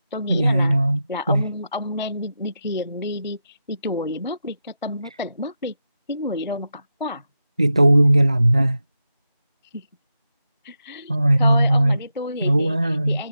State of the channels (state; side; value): inverted; both; correlation -0.88